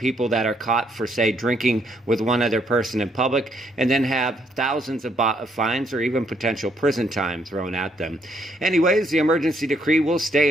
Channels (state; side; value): normal; both; correlation 0.71